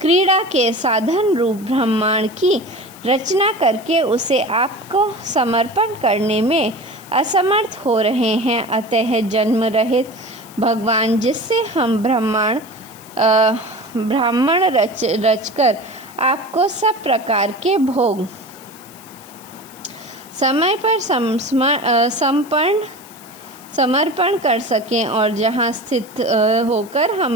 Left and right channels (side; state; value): left; noise; hiss, 21 dB below the sound